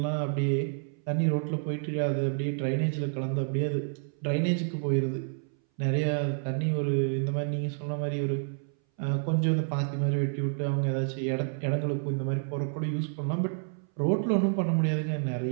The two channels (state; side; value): silent; left; 58 dB below the other